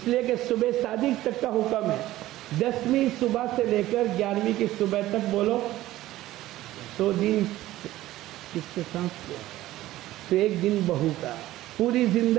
لیے کہ صبح صادق تک کا حکم ہے. 10ویں صبح سے لے کر 11ویں کی صبح تک بولو تو دن کس کے ساتھ تو ایک دن بہو کا. پوری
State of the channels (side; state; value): left; quieter; 15.6 dB